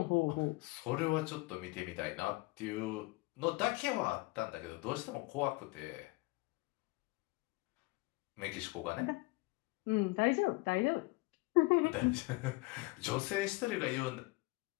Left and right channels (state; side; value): quieter; right; 23.8 dB